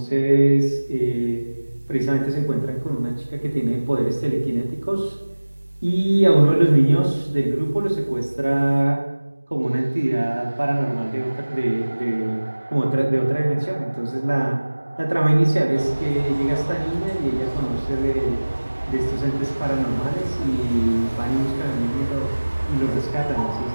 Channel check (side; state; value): both; inverted; correlation -1.00